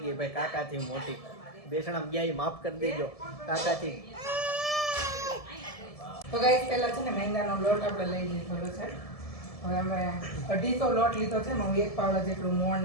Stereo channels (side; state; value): right; late; 1.7 ms